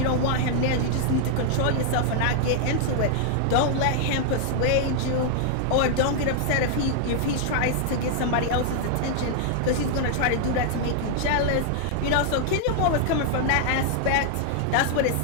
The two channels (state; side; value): different; both; correlation 0.00